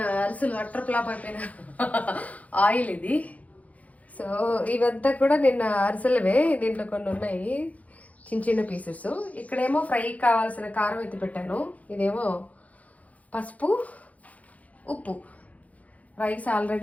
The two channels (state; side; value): late; right; 0.070 ms